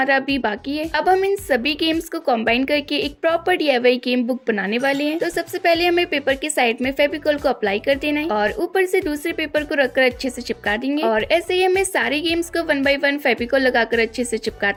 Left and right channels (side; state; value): both; identical; correlation 1.00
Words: अभी बाकी है। अब हम इन सभी गेम्स को कंबाइन करके एक प्रॉपर DIY गेम बुक बनाने वाले हैं। तो सबसे पहले हमें पेपर के साइड में फेविकॉल को अप्लाई कर देना है और ऊपर से दूसरे पेपर को रखकर अच्छे से चिपका देंगे और ऐसे ही हमें सारे गेम्स को 1 बाय 1 फेविकॉल लगाकर अच्छे से